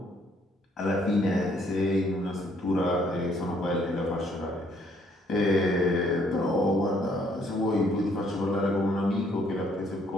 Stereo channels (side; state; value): both; normal; correlation 0.66